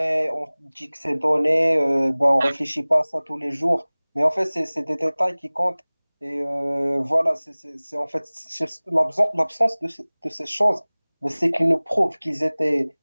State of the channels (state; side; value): inverted; both; correlation -1.00